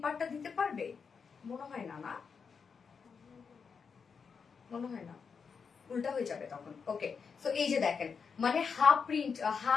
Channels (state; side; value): quieter; right; 5.9 dB